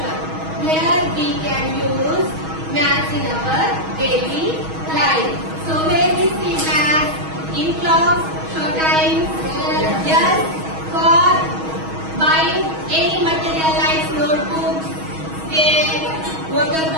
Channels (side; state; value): left; late; 6.3 ms